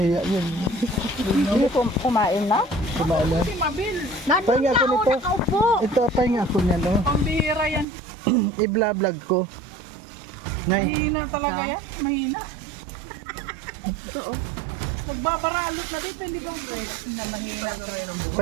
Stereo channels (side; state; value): left; drops out; at 7.9 s